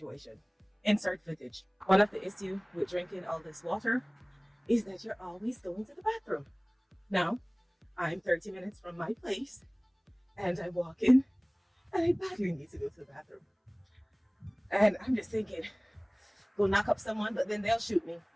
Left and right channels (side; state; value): both; identical; correlation 1.00